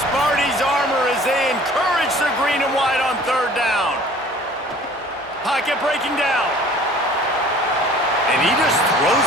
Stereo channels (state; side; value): normal; both; correlation 0.49